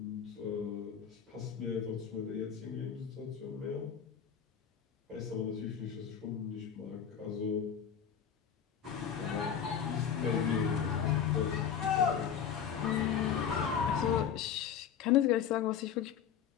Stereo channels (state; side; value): quieter; right; 8.2 dB